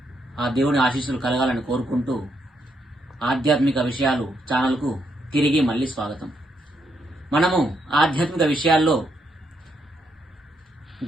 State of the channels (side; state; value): both; normal; correlation 0.77